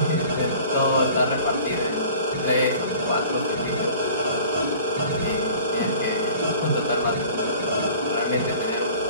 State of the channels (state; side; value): inverted; both; correlation -0.46